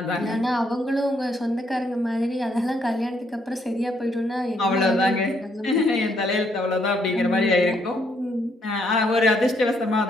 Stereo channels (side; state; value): both; normal; correlation 0.72